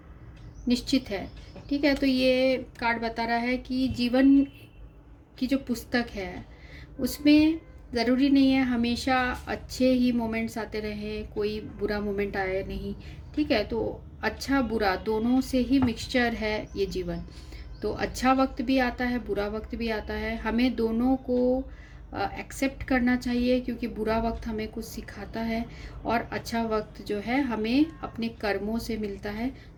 निश्चित है। ठीक है, तो ये कार्ड बता रहा है कि जीवन की जो पुस्तक है उसमें ज़रूरी नहीं है हमेशा अच्छे ही मोमेंट्स आते रहें, कोई बुरा मोमेंट आए नहीं। ठीक है, तो अच्छा बुरा दोनों से ही मिक्सचर है ये जीवन। तो अच्छा वक्त भी आता है, बुरा वक्त भी आता है, हमें दोनों को एक्सेप्ट करना चाहिए, क्योंकि बुरा वक्त हमें कुछ सिखाता है और अच्छा वक्त जो है हमें अपने कर्मों से मिलता है।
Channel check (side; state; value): both; identical; correlation 1.00